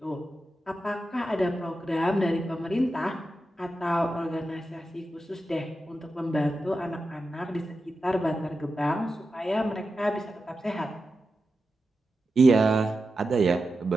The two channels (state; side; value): normal; both; correlation 0.90